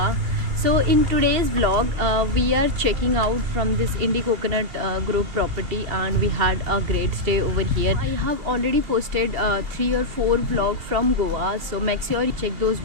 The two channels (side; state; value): left; late; 2.7 ms